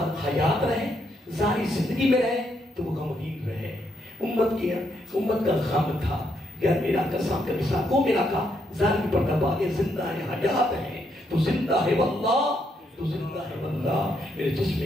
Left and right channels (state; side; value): normal; both; correlation 0.76